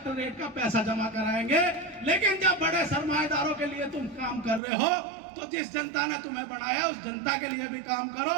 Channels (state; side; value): drops out; left; at 4.6 s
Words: का पैसा जमा कराएंगे। लेकिन जब बड़े सरमाएदारों के लिए तुम काम कर रहे हो तो जिस जनता ने तुम्हें बनाया उस जनता के लिए भी काम